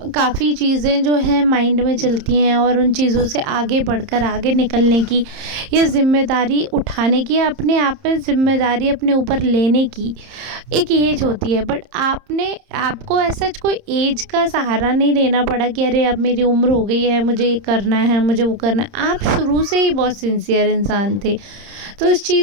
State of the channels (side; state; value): left; late; 30 ms